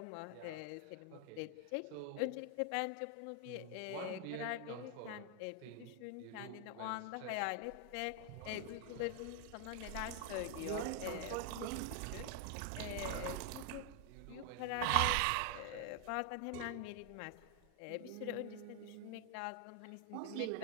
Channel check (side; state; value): both; different; correlation 0.00